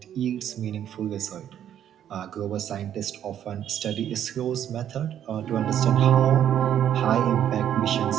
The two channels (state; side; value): quieter; left; 10.2 dB